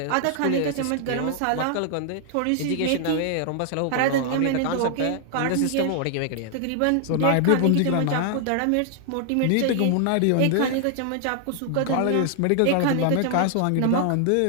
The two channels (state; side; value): different; both; correlation 0.00